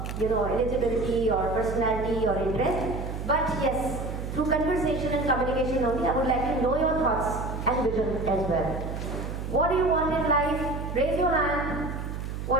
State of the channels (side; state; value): right; noise; hum, 6 dB below the sound